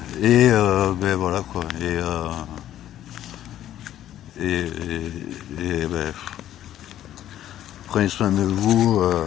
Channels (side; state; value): right; quieter; 12.1 dB